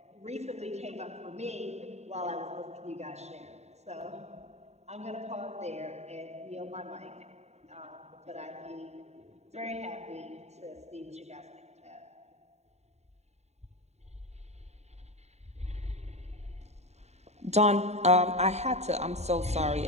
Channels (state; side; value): late; left; 0.32 ms